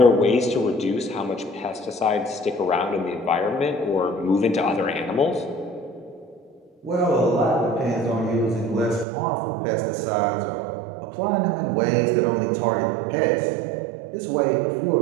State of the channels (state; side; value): drops out; left; at 9.1 s